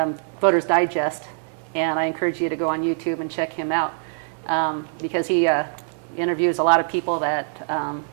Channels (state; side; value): silent; left; digital silence